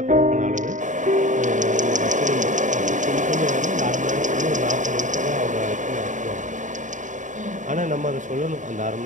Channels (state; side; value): late; left; 0.36 ms